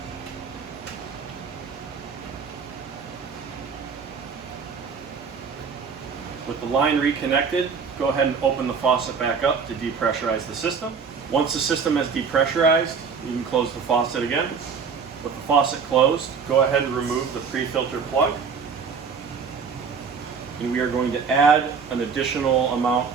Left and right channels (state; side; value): quieter; left; 5.8 dB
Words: With the line reconnected, go ahead and open the faucet back up to depressurize the system. Once the system has depressurized, you can close the faucet again. With the faucet closed, go ahead and remove the pre-filter plug. And we are going to add an additional